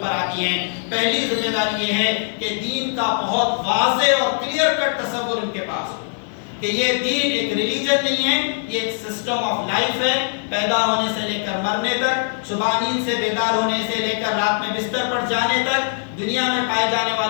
پر آتی ہیں۔ پہلی ذمہ داری یہ ہے کہ دین کا بہت واضح اور کلیئر کٹ تصور ان کے پاس ہو کہ یہ دین ایک ریلیجن نہیں ہے، یہ ایک سسٹم آف لائف ہے۔ پیدا ہونے سے لے کر مرنے تک، صبح نیند سے بیدار ہونے سے لے کر رات میں بستر پر جانے تک، دنیا میں پائے جانے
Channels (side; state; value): right; silent; digital silence